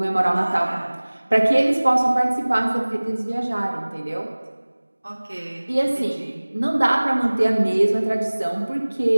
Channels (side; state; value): both; inverted; correlation -1.00